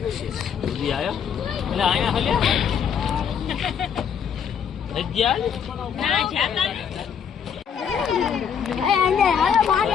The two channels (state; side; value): quieter; right; 7.6 dB